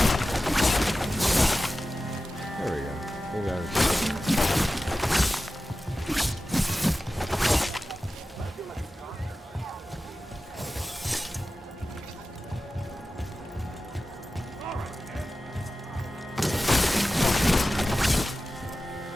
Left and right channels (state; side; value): normal; both; correlation 0.95